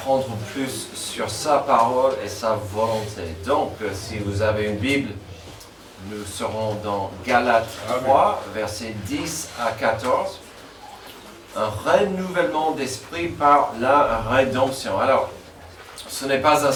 plus sur sa parole et sa volonté. Donc, si vous avez une Bible, nous serons dans Galates 3, versets 10 à 14. Un renouvellement d'esprit par la rédemption. Alors, ce n'est pas un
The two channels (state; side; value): identical; both; correlation 1.00